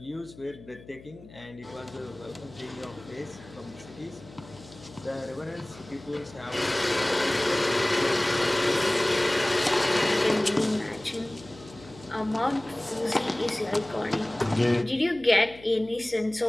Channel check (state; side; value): noise; left; hum, 20 dB below the sound